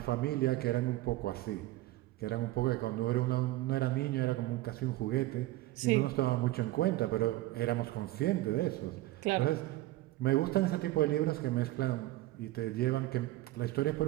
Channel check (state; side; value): quieter; left; 17.0 dB